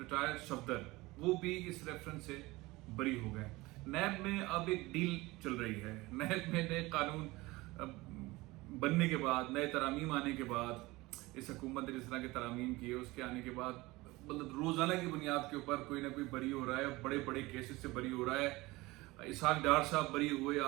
सफदर वो भी इस रेफरेंस से बरी हो गए। नैब में अब एक डील चल रही है। नैब में नए कानून बनने के बाद, नए तरामीम आने के बाद, इस हुकूमत ने जिस तरह के तरामीम किए उसके आने के बाद मतलब रोजाना की बुनियाद के ऊपर कोई ना कोई बरी हो रहा है, बड़े बड़े केसेस से बरी हो रहा है। इसहाक डार साहब बरी हुए,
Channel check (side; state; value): left; quieter; 21.0 dB